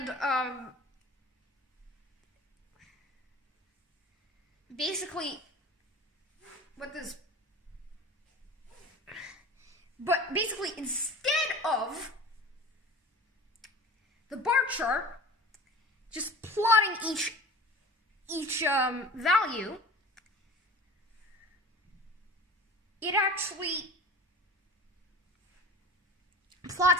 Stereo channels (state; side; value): normal; both; correlation 0.39